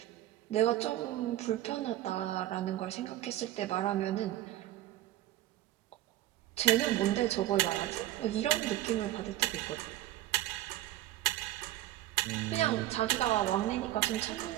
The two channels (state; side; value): quieter; left; 14.7 dB